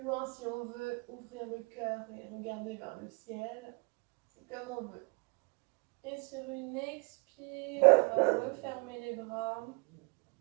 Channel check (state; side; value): quieter; left; 31.3 dB